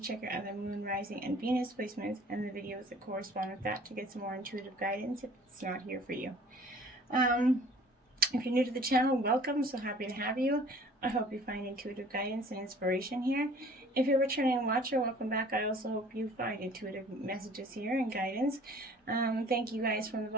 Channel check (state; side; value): normal; both; correlation 0.51